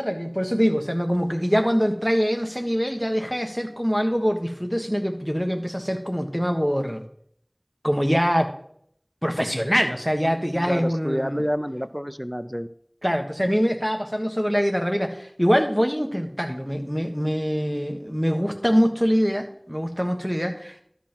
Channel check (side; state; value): both; identical; correlation 1.00